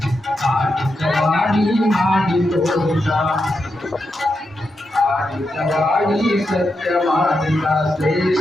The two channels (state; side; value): normal; both; correlation 0.86